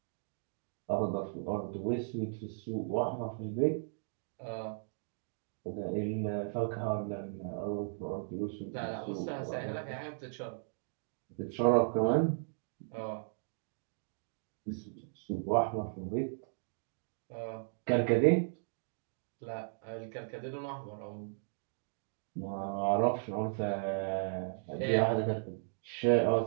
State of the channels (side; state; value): left; silent; digital silence